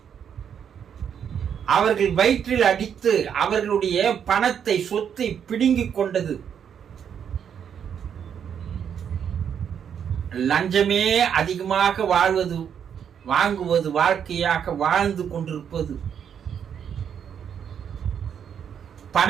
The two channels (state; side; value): quieter; left; 8.2 dB